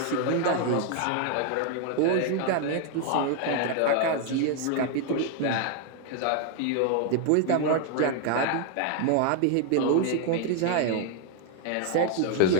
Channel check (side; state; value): both; different; correlation 0.00